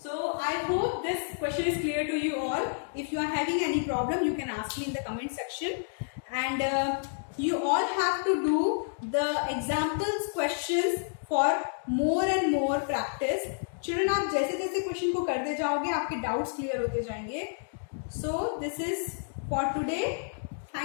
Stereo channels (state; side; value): silent; right; digital silence